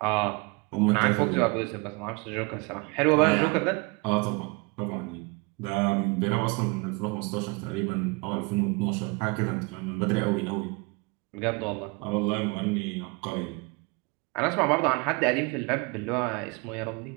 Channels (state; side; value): quieter; left; 28.6 dB